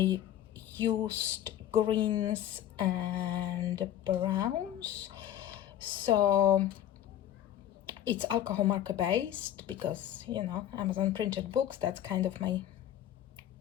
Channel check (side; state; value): right; quieter; 11.5 dB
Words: used greens and browns. So it's alcohol marker based because, you know, Amazon printed books, that's kind of my